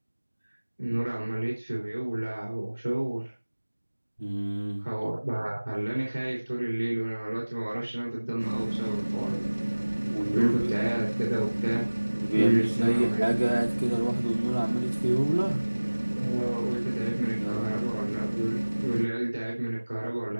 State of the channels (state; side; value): inverted; both; correlation -1.00